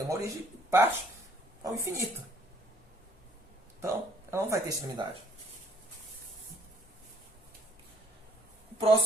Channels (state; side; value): normal; both; correlation 0.61